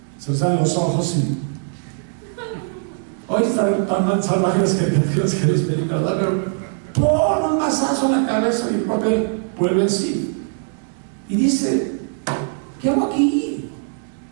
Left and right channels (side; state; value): left; silent; 65 dB below the other